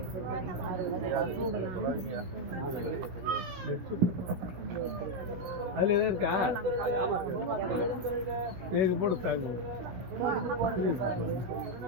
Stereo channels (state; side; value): late; left; 16 ms